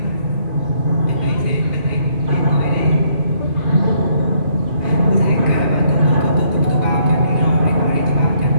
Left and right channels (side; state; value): left; late; 2.5 ms